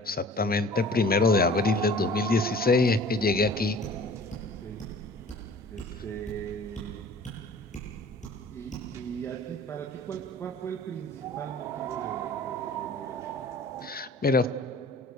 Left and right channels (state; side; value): normal; both; correlation 0.46